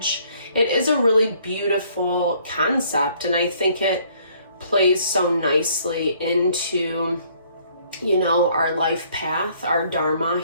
it is a really beautiful concept, and I think it plays so nicely into, you know, our life path, our dharma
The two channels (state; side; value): inverted; both; correlation -0.62